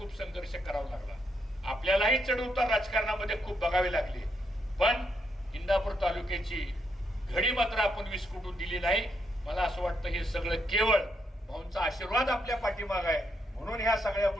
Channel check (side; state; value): both; normal; correlation 0.78